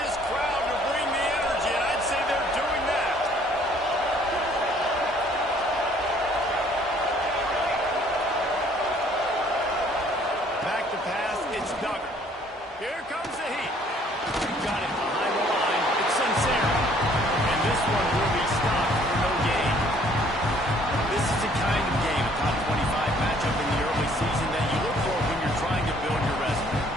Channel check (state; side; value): normal; both; correlation 0.60